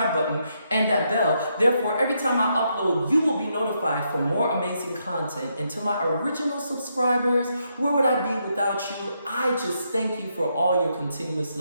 button and that bell. Therefore, every time I upload, you will be notified for more amazing content. And to my original subscribers, where would I be without you? I just thank you for all your continuous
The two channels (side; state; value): both; inverted; correlation -0.79